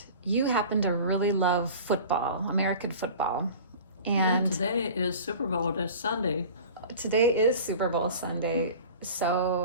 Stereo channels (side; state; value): both; inverted; correlation -0.40